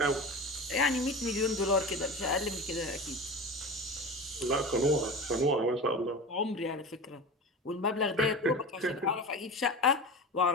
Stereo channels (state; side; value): normal; both; correlation 0.30